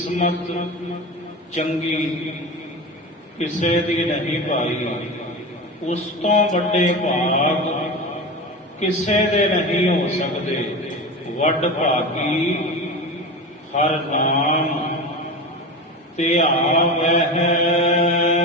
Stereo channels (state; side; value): normal; both; correlation 0.26